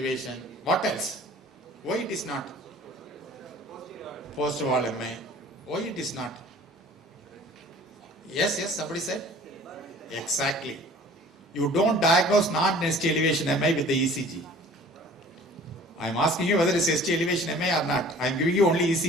What else? Why it is not? Post wall MI. Why it is not? Yes, somebody said? Exactly. You don't diagnose non-ST elevation MI with the ECG. I am asking you whether it's ST elevation MI or not. I am giving you only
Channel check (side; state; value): both; normal; correlation 0.48